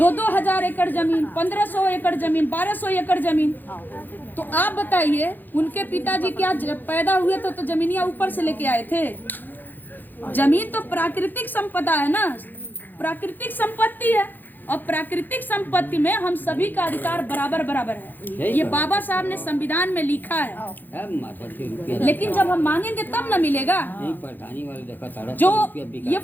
एकड़ जमीन, 1,500 एकड़ जमीन, 1,200 एकड़ जमीन। तो आप बताइए, उनके पिताजी क्या पैदा हुए तो जमीनियां ऊपर से लेके आए थे? जमीन तो प्राकृतिक संपदा है ना, प्राकृतिक संपत्ति है, और प्राकृतिक संपत्ति में हम सभी का अधिकार बराबर बराबर है। ये बाबा साहब ने संविधान में लिखा है। लेकिन जब हम मांगेंगे तब ना मिलेगा। जो ये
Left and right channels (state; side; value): late; right; 0.088 ms